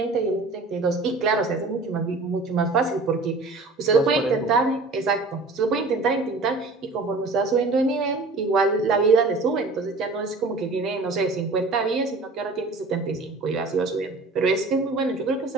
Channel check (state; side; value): quieter; left; 3.4 dB